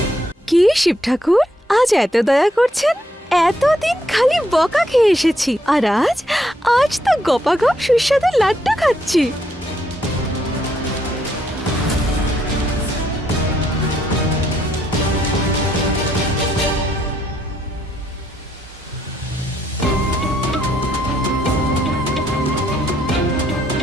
কি শিব ঠাকুর, আজ এত দয়া করছেন? এতদিন খালি বকা খেয়ে এসেছি, আর আজ তো গপাগপ সুস্বাদু লাড্ডু খাচ্ছি।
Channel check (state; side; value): normal; both; correlation 0.74